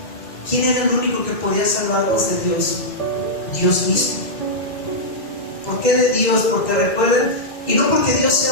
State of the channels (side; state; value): right; late; 2.1 ms